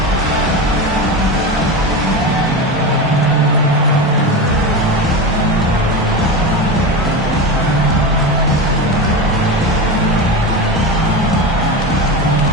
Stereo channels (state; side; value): normal; both; correlation 0.21